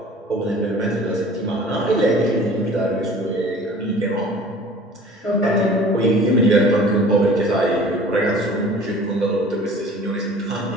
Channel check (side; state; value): both; normal; correlation 0.46